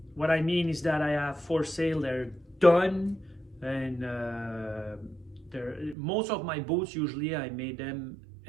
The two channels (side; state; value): left; drops out; at 6.0 s